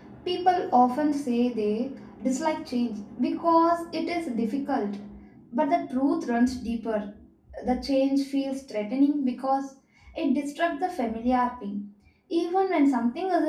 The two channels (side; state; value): both; identical; correlation 1.00